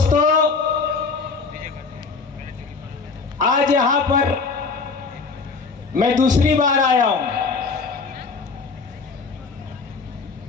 आज यहां पर मैं दूसरी बार आया हूं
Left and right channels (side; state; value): right; quieter; 4.6 dB